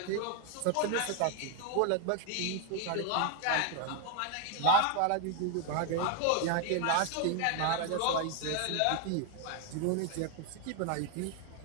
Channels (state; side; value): different; both; correlation 0.01